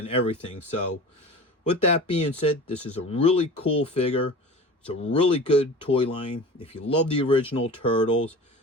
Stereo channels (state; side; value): normal; both; correlation 0.37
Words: everything. So with that being said, this is a really cool figure. It's a really good toy line. If you love the original Turtles